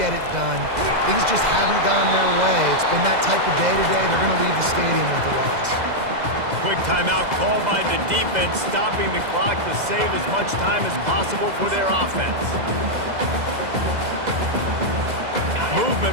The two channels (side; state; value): left; late; 2.0 ms